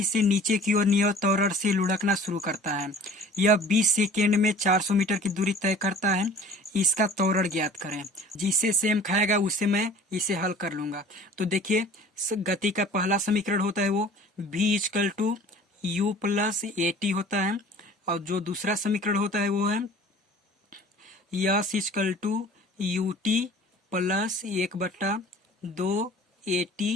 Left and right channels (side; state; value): both; normal; correlation 0.47